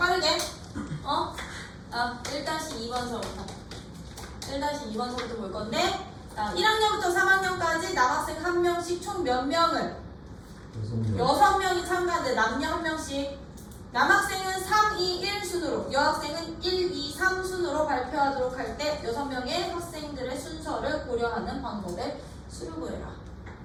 1-2번서부터 1-2번서부터 볼 건데 1학년부터 3학년까지 남학생 1명씩 총 몇 명을 6명이 참가하는데 남녀 1명씩 남학생은 3, 2, 1 순으로 여학생은 1, 2, 3 순으로 발표하도록 할 때 6명의 학생들의 순서를 고려하는 방법에 수를 구해라.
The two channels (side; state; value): both; identical; correlation 1.00